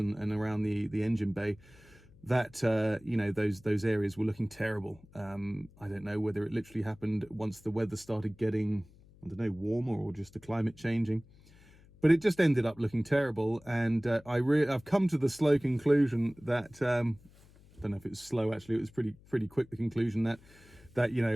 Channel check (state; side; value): noise; left; hum, 25 dB below the sound